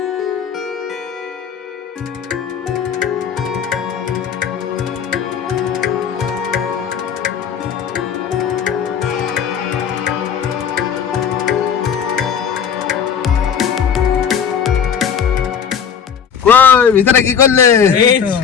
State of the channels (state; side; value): quieter; right; 7.6 dB